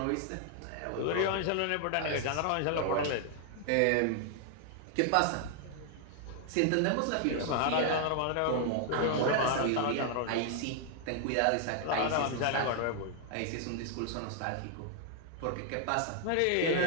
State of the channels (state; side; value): different; both; correlation 0.00